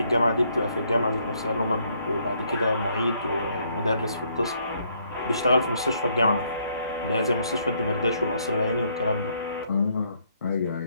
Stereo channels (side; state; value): both; inverted; correlation -0.69